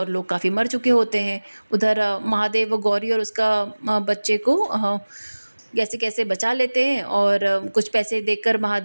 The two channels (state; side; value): inverted; both; correlation -1.00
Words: लोग काफ़ी मर चुके होते हैं। उधर महादेव गौरी और उसका बच्चे को कैसे कैसे बचा लेते हैं और कुछ पैसे देकर